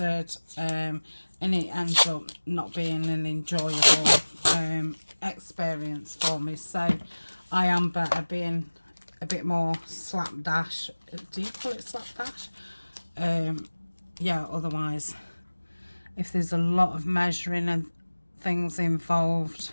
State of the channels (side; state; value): both; inverted; correlation -1.00